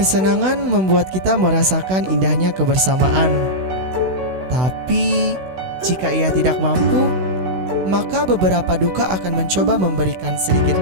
kesenangan membuat kita merasakan indahnya kebersamaan. Tapi, jika ia tidak mampu, maka beberapa duka akan mencoba memberikan sedikit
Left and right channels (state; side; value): late; left; 16 ms